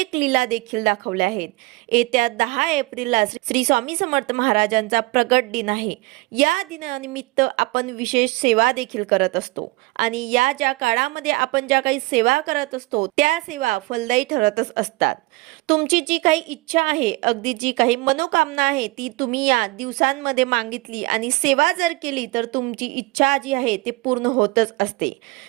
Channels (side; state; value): left; quieter; 23.1 dB